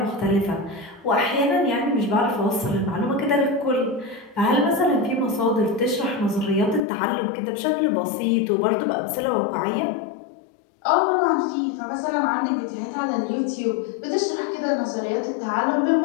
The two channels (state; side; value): drops out; right; at 6.8 s